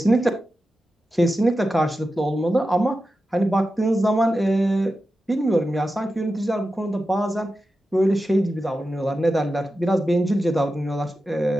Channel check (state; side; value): normal; both; correlation 0.92